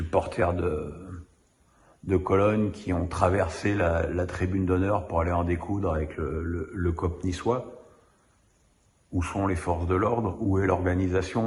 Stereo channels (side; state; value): both; identical; correlation 1.00